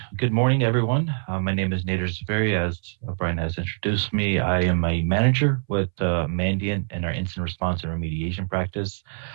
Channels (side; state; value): left; silent; 62 dB below the other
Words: Good morning, everyone. My name is Nader Zaveri. As Brian has introduced me, I am a manager with Mandiant in our incident response and remediation practice.